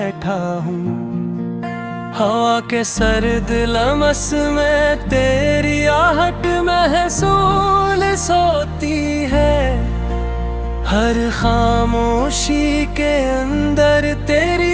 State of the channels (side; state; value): both; identical; correlation 1.00